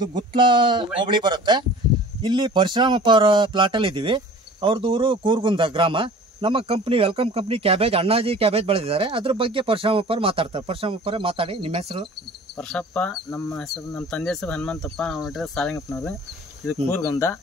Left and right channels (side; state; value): both; normal; correlation 0.44